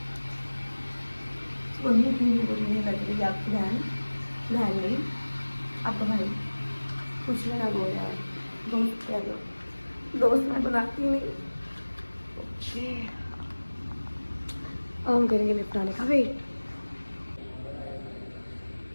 वही इतनी बुरी नहीं लग रही आपकी बहन नहीं, आपका भाई कुछ भी ना बोल यार, दोस्त कह दो, दोस्त मैं बनाती नहीं। ओके, अब हम करेंगे लिफ्ट आने का वेट।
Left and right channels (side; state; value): both; inverted; correlation -1.00